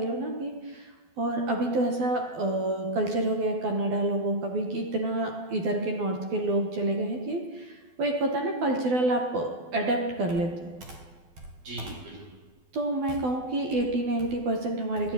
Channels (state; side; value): late; left; 12 ms